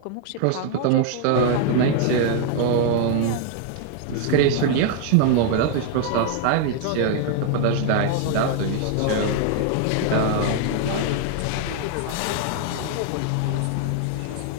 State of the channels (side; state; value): both; different; correlation 0.00